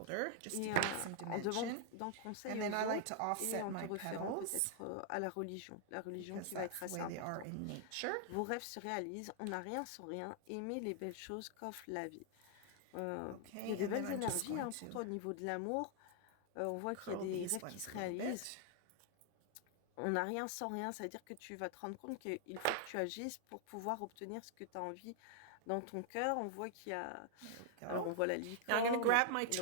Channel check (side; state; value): both; different; correlation -0.01